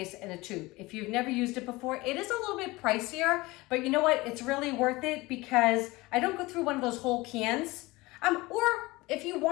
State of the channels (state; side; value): quieter; right; 21.4 dB